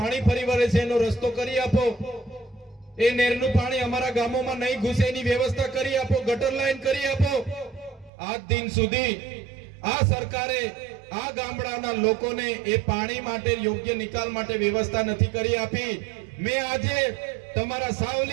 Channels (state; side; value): drops out; left; at 8.1 s